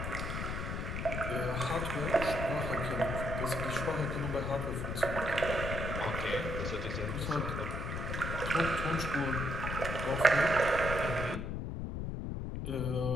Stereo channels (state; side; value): noise; left; rumble, 3 dB below the sound